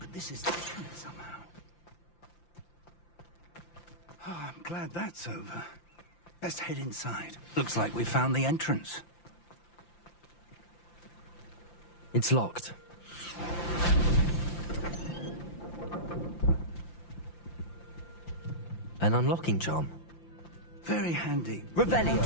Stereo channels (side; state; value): right; late; 5.8 ms